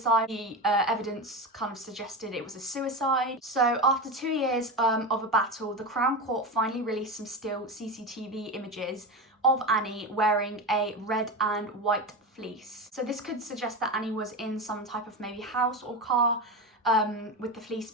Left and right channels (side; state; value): both; normal; correlation 0.20